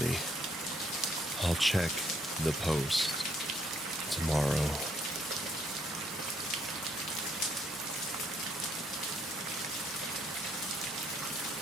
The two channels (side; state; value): both; normal; correlation 0.69